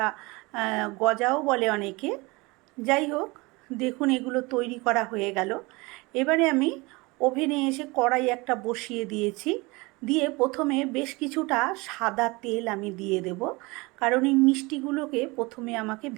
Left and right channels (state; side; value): quieter; left; 24.6 dB